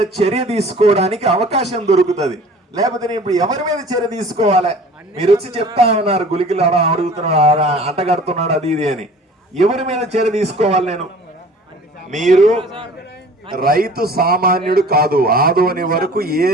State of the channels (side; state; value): both; normal; correlation 0.46